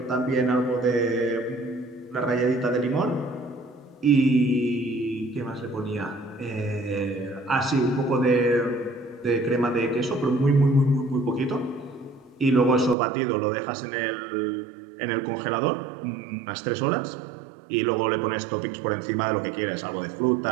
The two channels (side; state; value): left; drops out; at 13.0 s